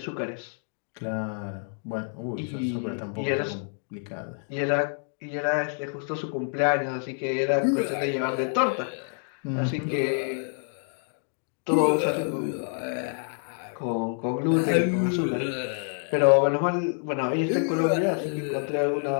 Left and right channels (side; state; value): right; silent; 60 dB below the other